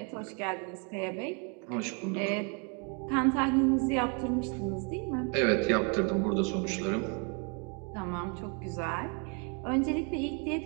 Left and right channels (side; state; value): left; quieter; 36.6 dB